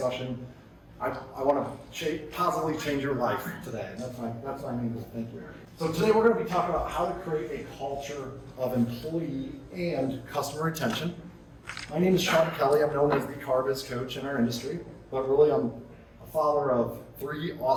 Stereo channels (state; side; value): identical; both; correlation 1.00